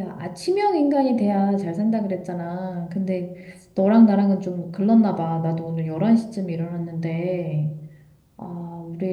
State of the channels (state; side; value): identical; both; correlation 1.00